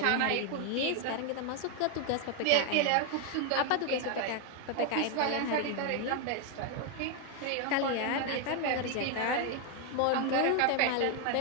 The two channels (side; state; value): both; different; correlation 0.01